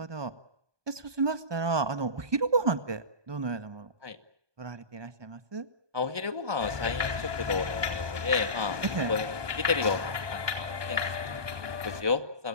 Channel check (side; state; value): left; late; 1.2 ms